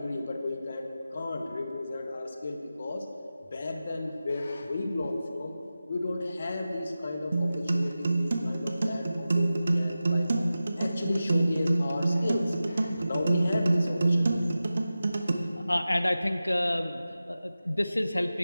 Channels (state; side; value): inverted; both; correlation -0.94